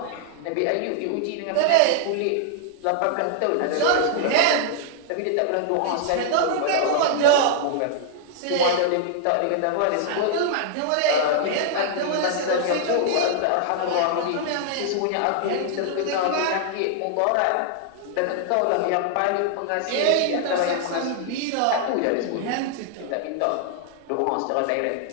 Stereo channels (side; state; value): both; different; correlation -0.01